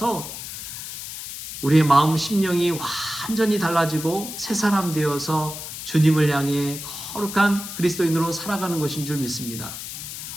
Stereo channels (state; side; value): noise; left; hiss, 9 dB below the sound